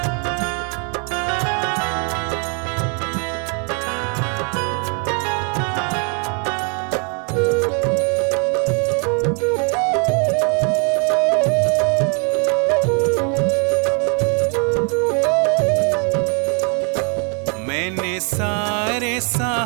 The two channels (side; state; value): left; quieter; 37.6 dB